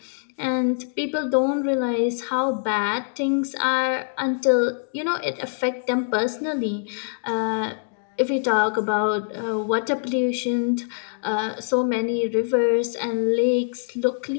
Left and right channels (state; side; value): silent; right; 63 dB below the other